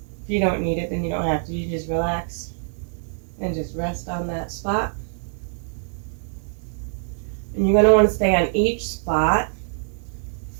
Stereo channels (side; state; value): left; silent; 62 dB below the other